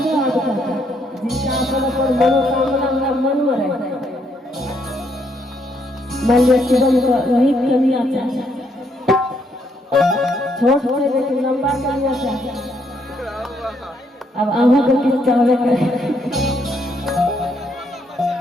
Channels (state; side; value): normal; both; correlation 0.73